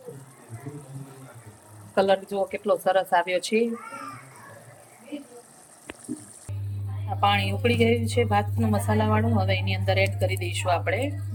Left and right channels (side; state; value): both; identical; correlation 1.00